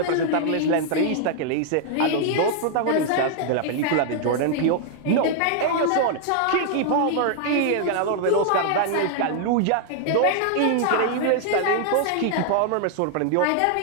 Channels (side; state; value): both; different; correlation -0.01